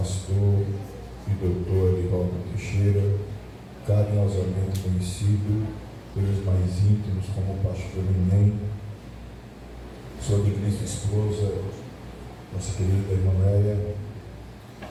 e doutor Edivaldo Teixeira, carinhosamente conhecido pelos mais íntimos como pastor Neném, sua digníssima esposa, nossa querida irmã Leia,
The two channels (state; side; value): identical; both; correlation 1.00